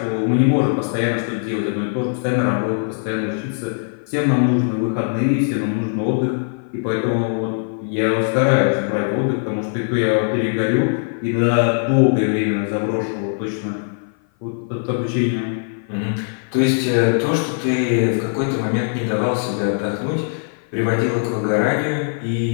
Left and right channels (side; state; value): right; silent; 55 dB below the other